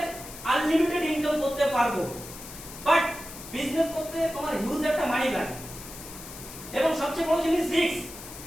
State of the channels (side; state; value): left; noise; hiss, 13 dB below the sound